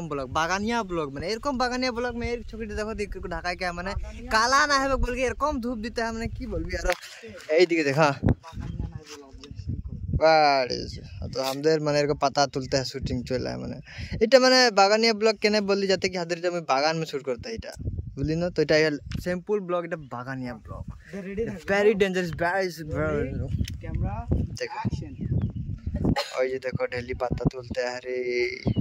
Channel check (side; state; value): both; identical; correlation 1.00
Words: ब्लॉग बागानिया ब्लॉग माने এরকম বাগানিয়া ব্লগ में एक छोटी देखो देख को ढाका के माने काला ना है बोल के এরকম धूप देते है माने की बोलबी यार এই দিকে देखा तो हमদের মানে এরকম पता तुलते है शूटिंग चल है माने এটা মানে বাগানিয়া ব্লগ কেনে বললি যাতে কি হাদের আমি বাগান में शूट करता এটা বুঝলি না তো এটা সিম্পল ব্লগ এটা বাগানিয়া blog very dangerous camera action और ये देखो डेली पत्ता तुलते हैं रे